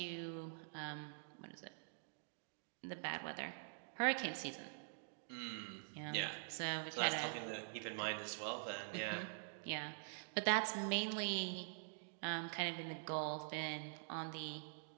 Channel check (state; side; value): silent; left; digital silence